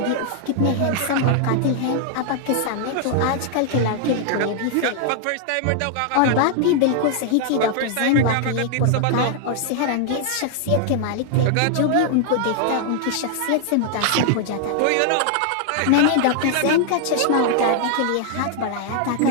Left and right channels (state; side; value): different; both; correlation 0.00